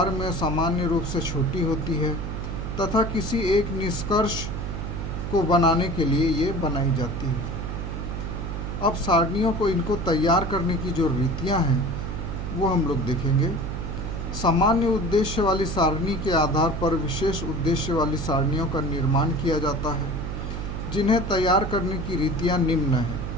में सामान्य रूप से छोटी होती है तथा किसी एक निष्कर्ष को बनाने के लिए ये बनाई जाती है। अब सारणियों को इनको तैयार करने की जो रीतियां हैं वो हम लोग देखेंगे। सामान्य उद्देश्य वाली सारणी के आधार पर विशेष उद्देश्य वाली सारणियों का निर्माण किया जाता है, जिन्हें तैयार करने की रीतियां निम्न हैं।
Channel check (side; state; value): right; noise; hum, 5 dB below the sound